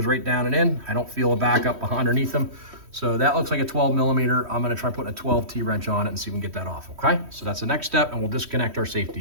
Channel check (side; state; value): left; late; 3.1 ms